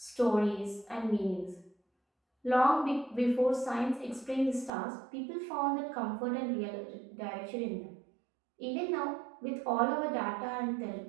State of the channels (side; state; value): left; drops out; at 4.7 s